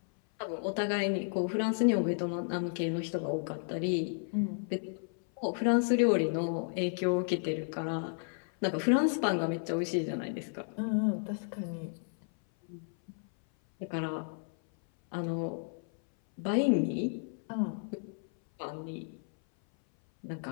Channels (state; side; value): silent; right; 56 dB below the other